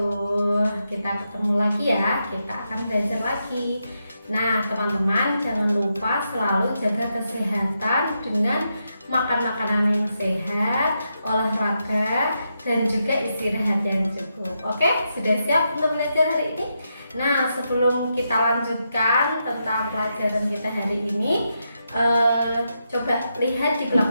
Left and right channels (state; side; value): inverted; both; correlation -0.84